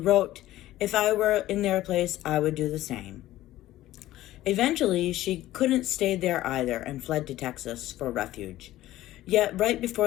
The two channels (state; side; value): quieter; right; 15.2 dB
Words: "If I were in their place, I would do the same." Eventually, she couldn't stay there either and fled to Texas for refuge. Yet, right